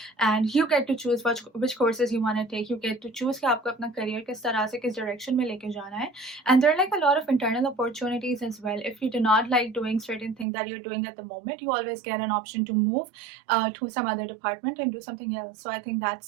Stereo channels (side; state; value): left; drops out; at 10.5 s